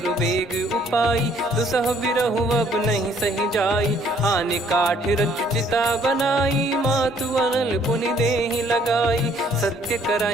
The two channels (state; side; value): normal; both; correlation 0.62